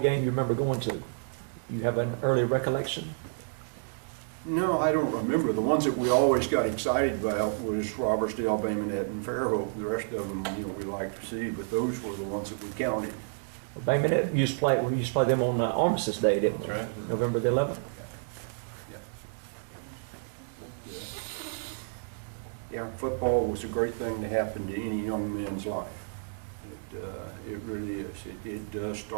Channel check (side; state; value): left; silent; digital silence